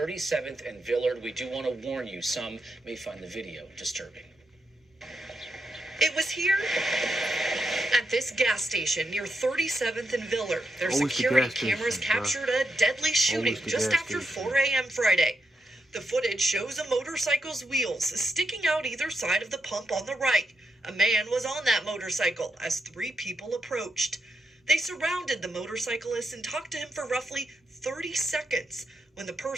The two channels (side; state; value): both; normal; correlation 0.83